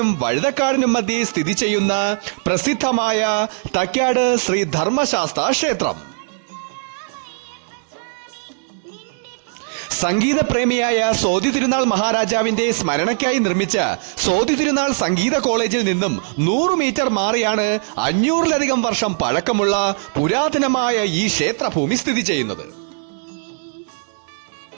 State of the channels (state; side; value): silent; left; digital silence